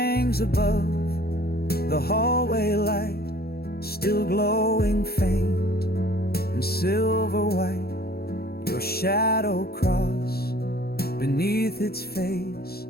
above the hallway light, still glowing faint and silver white. Your shadow crossed beneath its face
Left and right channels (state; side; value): late; right; 0.45 ms